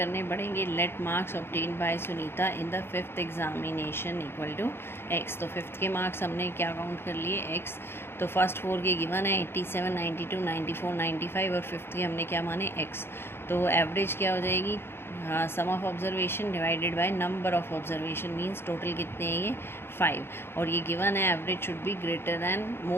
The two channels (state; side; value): late; right; 0.11 ms